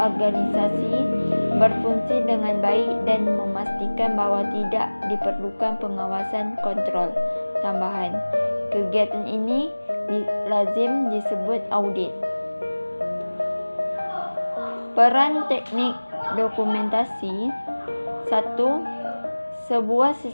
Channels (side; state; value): both; inverted; correlation -1.00